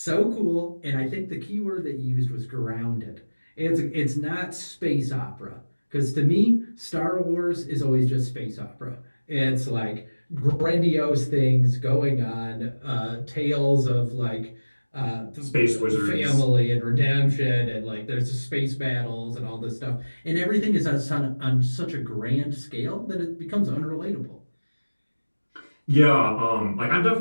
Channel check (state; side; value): inverted; both; correlation -1.00